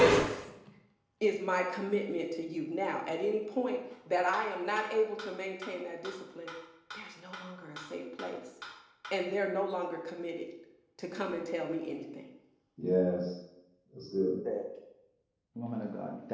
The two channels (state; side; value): identical; both; correlation 1.00